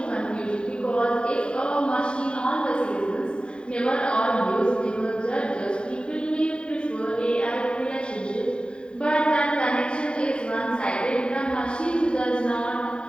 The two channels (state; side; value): late; right; 0.051 ms